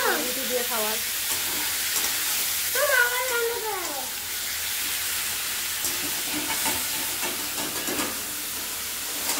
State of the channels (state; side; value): noise; left; hum, 26 dB below the sound